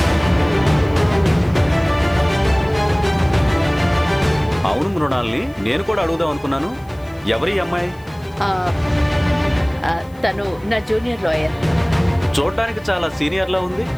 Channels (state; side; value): noise; left; hiss, 29 dB below the sound